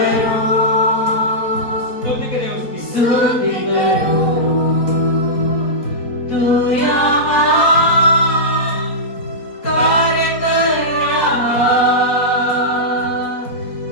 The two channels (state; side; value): late; right; 4.2 ms